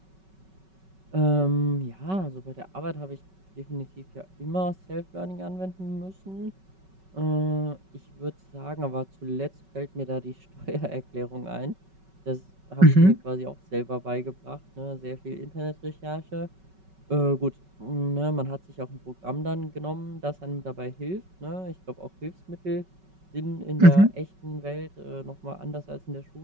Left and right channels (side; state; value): left; late; 5.3 ms